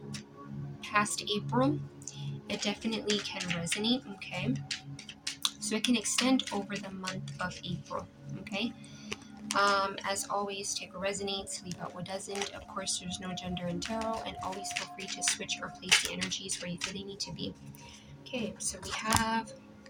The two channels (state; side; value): identical; both; correlation 1.00